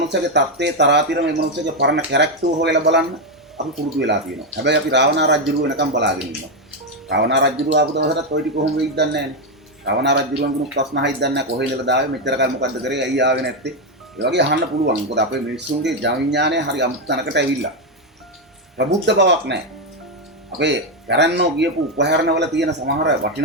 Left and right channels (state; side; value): normal; both; correlation 0.06